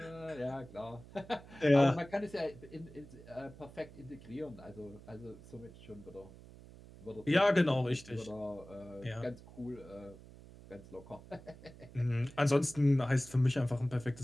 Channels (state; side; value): noise; right; hum, 19 dB below the sound